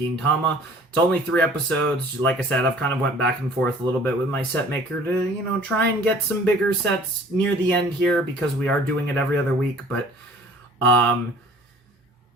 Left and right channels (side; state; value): both; normal; correlation 0.51